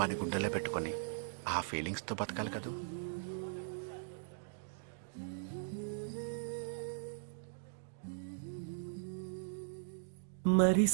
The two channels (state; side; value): silent; left; digital silence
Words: గుండెలో పెట్టుకుని ఆ ఫీలింగ్స్ తో బతకాలి కదూ. మరి